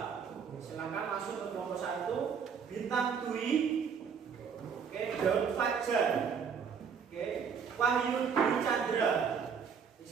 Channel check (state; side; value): quieter; left; 6.6 dB